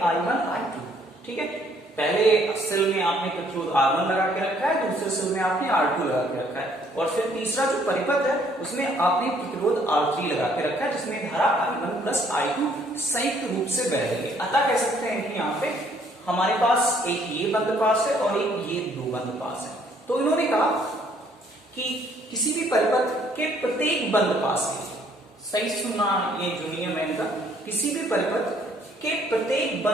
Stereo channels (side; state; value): both; normal; correlation 0.64